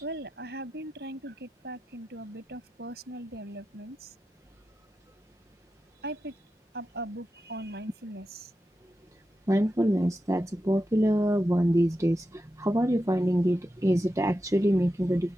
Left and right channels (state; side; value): normal; both; correlation 0.90